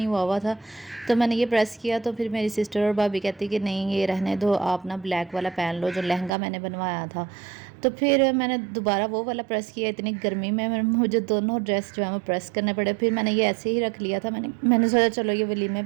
हुआ था, तो मैंने ये प्रेस किया। तो फिर मेरी सिस्टर और भाभी कहती कि नहीं ये रहने दो, आप ना ब्लैक वाला पहन लो जो लहंगा मैंने बनवाया था। तो फिर मैंने दोबारा वो वाला प्रेस किया। इतनी गर्मी में मुझे दोनों ड्रेस जो है वो प्रेस करने पड़े। फिर मैंने ये ऐसे ही रख लिया था। मैंने सोचा चलो ये वलीमे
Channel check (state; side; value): drops out; left; at 6.3 s